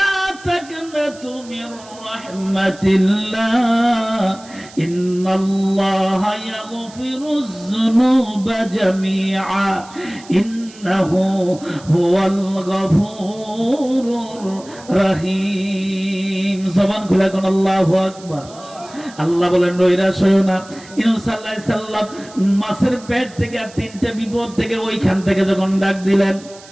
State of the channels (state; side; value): noise; right; hiss, 21 dB below the sound